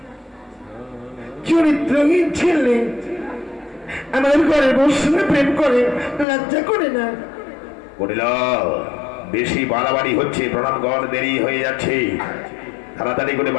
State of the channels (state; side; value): drops out; right; at 6.2 s